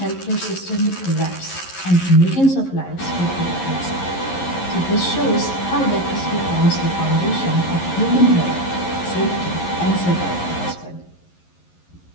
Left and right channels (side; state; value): right; late; 11 ms